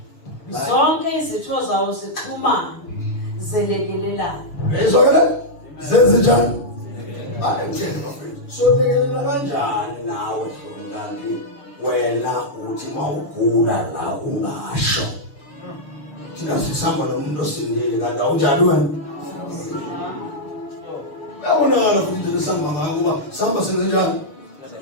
Zonke izitho zawo zixhumane zelekelelana. Ezokela? Zenze njani? Ayitshela bafethu. So lekelela kanjani nawe hlomnandi wena uthi mawugula la ungasho. Thina sisamba nomuntu osindile kanti awunjani wena? Yabonakala futhi lesamba ngako kuba samba senze njani?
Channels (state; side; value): late; right; 6.9 ms